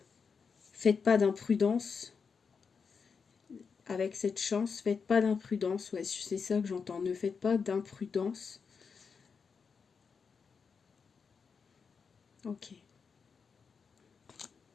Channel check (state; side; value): quieter; right; 5.7 dB